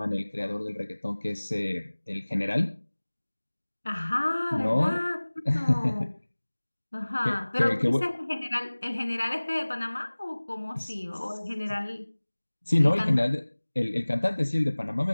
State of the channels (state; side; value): inverted; both; correlation -1.00